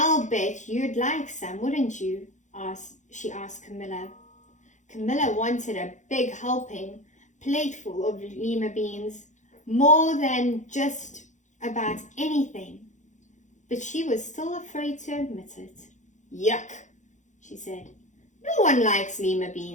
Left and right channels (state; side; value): late; right; 0.35 ms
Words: bet you'd like some, wouldn't you?" she asked Camilla. Camilla wanted a big helping plateful of lima beans, more than just about anything, but she was still afraid to admit it. "Yuck," she said. "No one likes lima